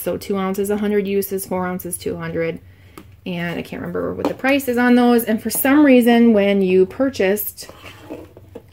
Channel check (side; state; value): both; identical; correlation 1.00